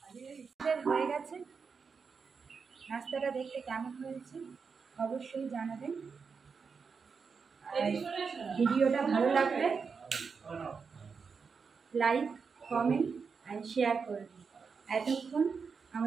হয়ে গেছে। নাস্তাটা দেখতে কেমন হয়েছে অবশ্যই জানাবেন। আর ভিডিওটা ভালো লাগলে লাইক, কমেন্ট অ্যান্ড শেয়ার করবেন। এতক্ষণ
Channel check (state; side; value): quieter; left; 5.5 dB